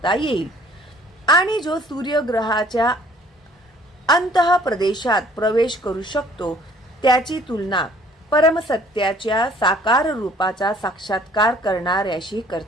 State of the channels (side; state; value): both; normal; correlation 0.56